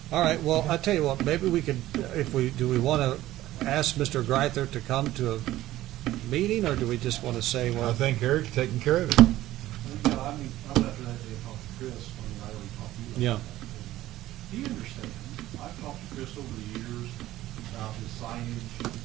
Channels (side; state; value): left; quieter; 15.2 dB